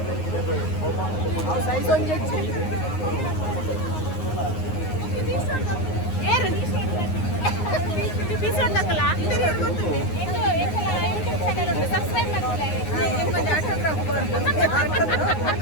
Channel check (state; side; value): late; right; 9.6 ms